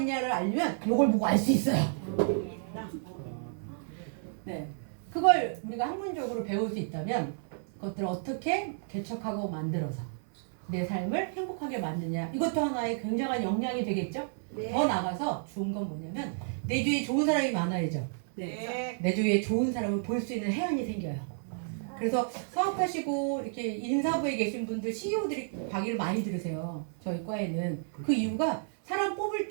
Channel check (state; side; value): silent; left; 57 dB below the other